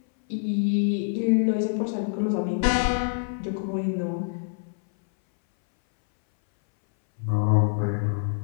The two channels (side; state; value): right; silent; 59 dB below the other